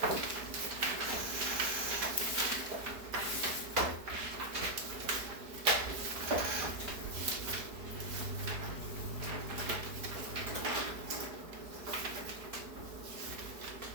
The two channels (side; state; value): left; late; 4.7 ms